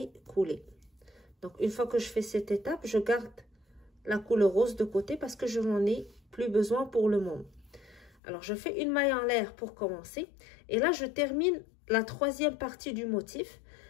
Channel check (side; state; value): right; drops out; at 8.2 s